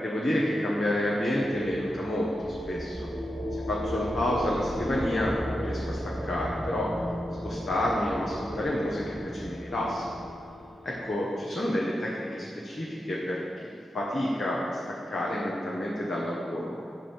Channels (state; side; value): normal; both; correlation 0.88